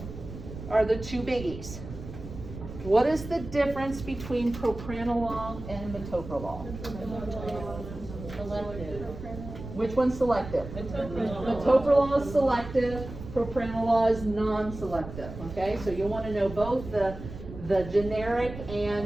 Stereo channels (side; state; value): right; noise; rumble, 11 dB below the sound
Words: are the two biggies. What is the difference between propranolol and metoprolol? Selective. Which one's selective? Metoprolol is selective, propranolol is non-selective, okay? So you'll want to know both the generic